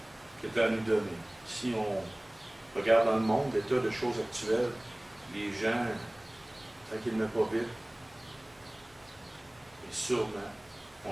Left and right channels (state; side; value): noise; left; hum, 28 dB below the sound